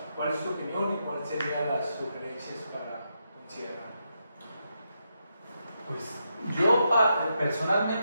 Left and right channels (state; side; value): inverted; both; correlation -0.83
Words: ¿cuál es tu opinión y cuáles serían las sugerencias para considerar? Pues yo